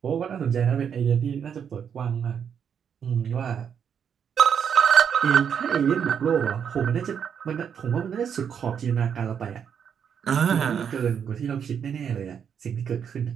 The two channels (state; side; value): quieter; left; 7.7 dB